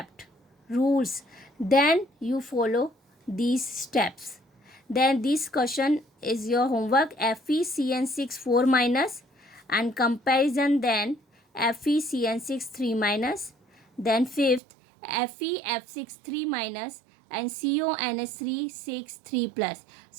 rules, then you follow these steps. Then this question is your homework, FeCN6 4 minus and comparison, then FeCN6 3 minus, then fifth FeF6 3 minus and CONS3 6 3 plus.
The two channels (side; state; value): left; drops out; at 14.6 s